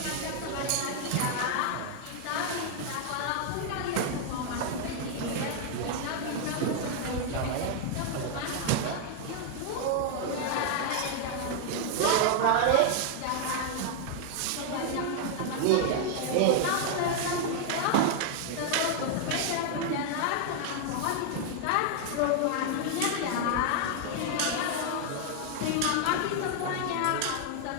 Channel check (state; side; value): different; both; correlation 0.00